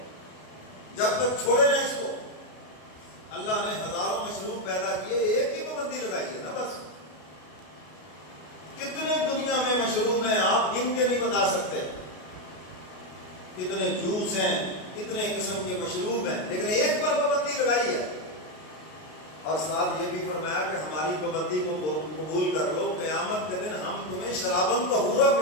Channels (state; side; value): late; right; 33 ms